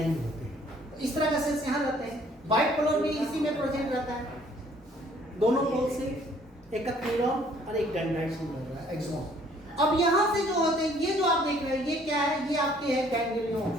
होते हैं। तो इस तरह का सेल्स यहाँ रहते हैं। बाइपोलर भी इसी में प्रेजेंट रहता है, दोनों पोल से, एक न्यूरॉन और एक डेंड्राइट से मिल रहा है, एक्सॉन। अब यहाँ से जो होते हैं, ये जो आप देख रहे हैं, ये क्या है, ये आपके है गैंग्लियन।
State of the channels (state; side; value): normal; both; correlation 0.60